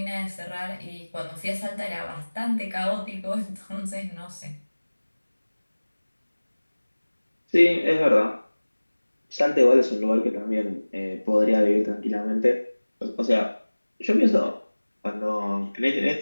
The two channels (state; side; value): inverted; both; correlation -1.00